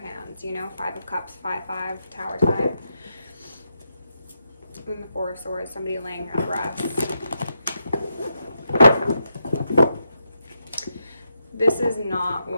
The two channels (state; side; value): inverted; both; correlation -0.83